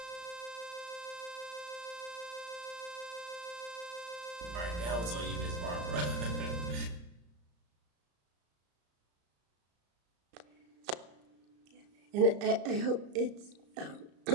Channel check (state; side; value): late; left; 34 ms